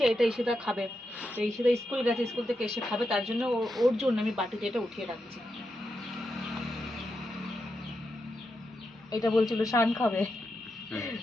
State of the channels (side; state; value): both; normal; correlation 0.86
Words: এটা ঈশিতা খাবে, তো ঈশিতা স্কুল গেছে, স্কুল থেকে এসে খাবে, তার জন্য ওর জন্য আমি বাটিতে এটা উঠিয়ে রাখছি। এটা বলছিল শান খাবে,